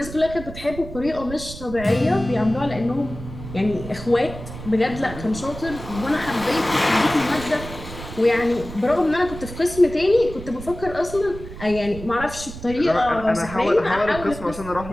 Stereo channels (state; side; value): noise; right; rumble, 12 dB below the sound